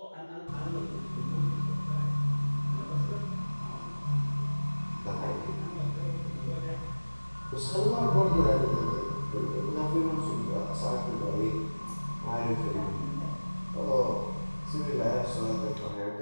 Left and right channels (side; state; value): both; inverted; correlation -1.00